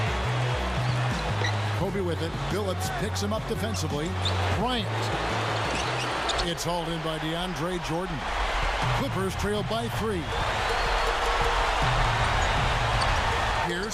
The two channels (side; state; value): both; identical; correlation 1.00